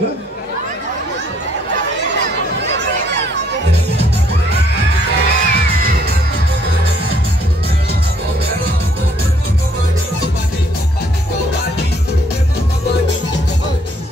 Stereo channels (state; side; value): normal; both; correlation 0.66